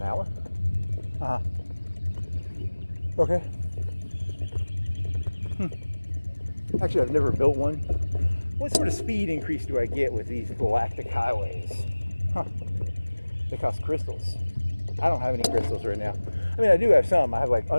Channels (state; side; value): inverted; both; correlation -1.00